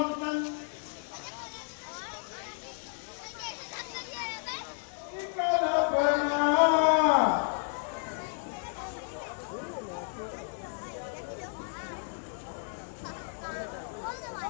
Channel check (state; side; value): silent; right; 56 dB below the other